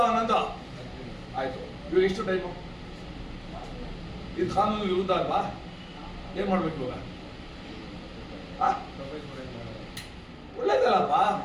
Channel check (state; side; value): identical; both; correlation 1.00